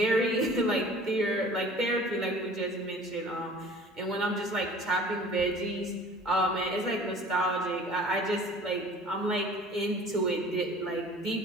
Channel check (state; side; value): normal; both; correlation 0.47